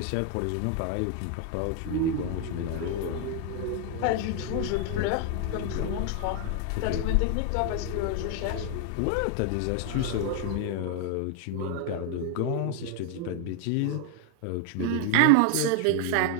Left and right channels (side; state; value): both; different; correlation 0.00